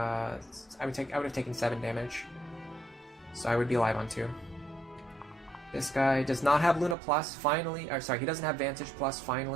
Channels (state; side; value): drops out; left; at 7.0 s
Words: taken 7 damage. So I would be alive on 2. This guy does not have Luna Plus, finally. Or sorry, he doesn't have Vantage Plus,